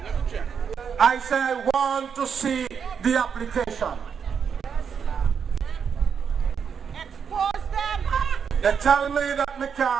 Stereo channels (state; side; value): quieter; left; 6.9 dB